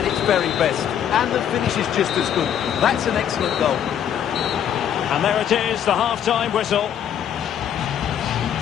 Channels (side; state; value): right; quieter; 9.5 dB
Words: its very best. And the finish is just as good. That's an excellent goal. And there it is, the half-time whistle.